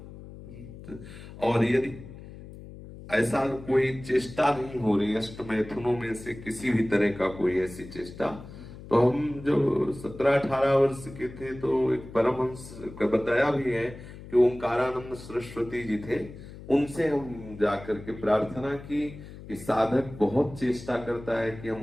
और यदि ऐसा कोई चेष्टा नहीं हो रही अष्ट मैथुनों में से किसी भी तरह का कोई ऐसी चेष्टा, तो हम जो 17-18 वर्ष के थे तो एक परमहंस का बताया भी है कि ओंकारानंद सरस्वती जी थे, उनसे हम जाकर के प्रार्थना की कि साधक बहुत चेष्टा करता है कि हम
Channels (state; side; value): noise; left; hum, 15 dB below the sound